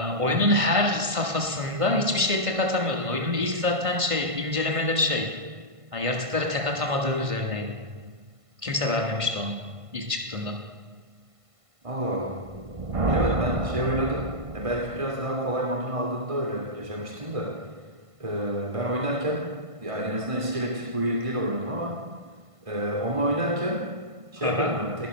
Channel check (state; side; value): late; left; 1.5 ms